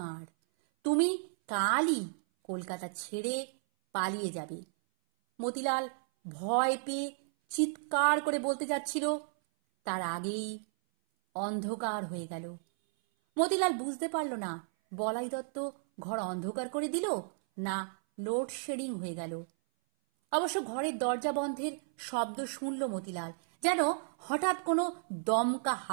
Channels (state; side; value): silent; left; 56 dB below the other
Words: তুমি কালই কলকাতা ছেড়ে পালিয়ে যাবে। মতিলাল ভয় পেয়ে চিৎকার করে বলতে যাচ্ছিল, তার আগেই অন্ধকার হয়ে গেল। মতিলাল বুঝতে পারল না বলাই দত্ত ঘর অন্ধকার করে দিল না লোডশেডিং হয়ে গেল। অবশ্য ঘরের দরজা বন্ধের শব্দ শুনল মতিলাল, যেন হঠাৎ কোনো দমকা